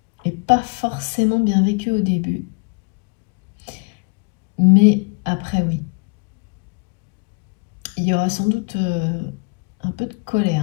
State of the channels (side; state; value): right; quieter; 31.6 dB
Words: et pas forcément bien vécu au début. Mais après, oui. Il y aura sans doute un peu de